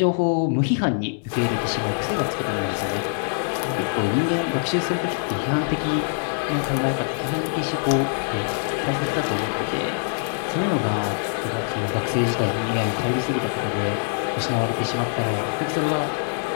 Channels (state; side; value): silent; right; digital silence